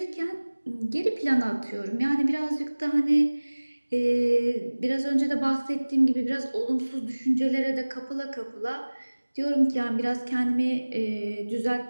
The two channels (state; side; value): inverted; both; correlation -1.00